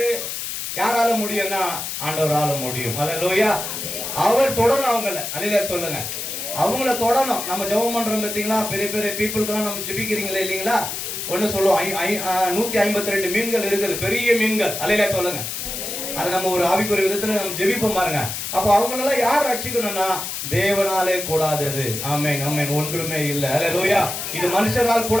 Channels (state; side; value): noise; left; hiss, 5 dB below the sound